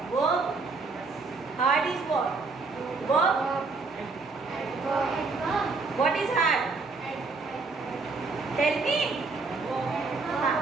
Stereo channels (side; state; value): left; quieter; 4.1 dB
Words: Verb. Hard is what? Verb. What is hard? Tell me.